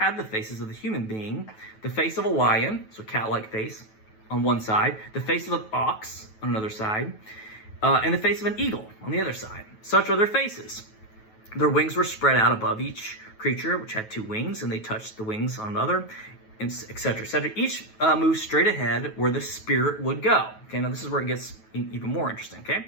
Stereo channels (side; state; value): right; late; 9.2 ms